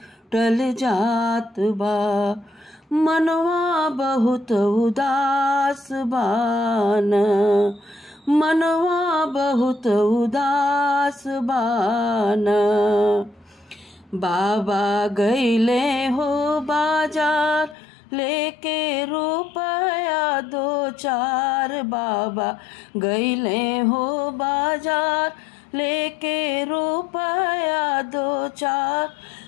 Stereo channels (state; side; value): drops out; right; at 17.8 s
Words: जात बा, मनवा बहुत उदास बाना। मनवा बहुत उदास बाना। बाबा गईले हो बाजार लेके रुपया दो चार, बाबा गईले हो बाजार लेके रुपया दो चार।